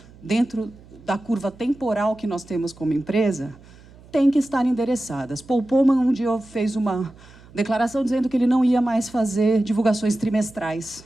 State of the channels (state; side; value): noise; right; hum, 23 dB below the sound